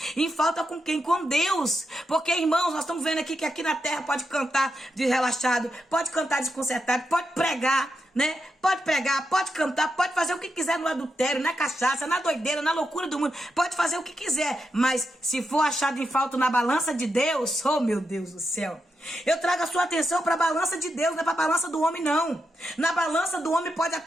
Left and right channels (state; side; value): normal; both; correlation 0.85